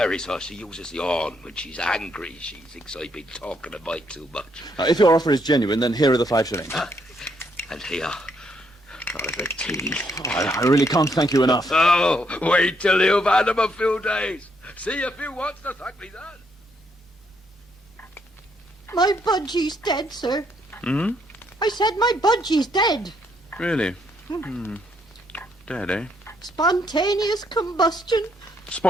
sir. She uses the horn when she's angry. She thinks I've been talking a mite too much. If your offer is genuine, then here are the 5 shillings. And here, for the tea. I really can't thank you enough. Oh, wait till you've had them a few days. See if you want to thank me then. My budgie's dead, sir. Hmm? I said my budgie's dead. Really? Dead, eh? Spontaneous combustion.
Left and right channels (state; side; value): normal; both; correlation 0.73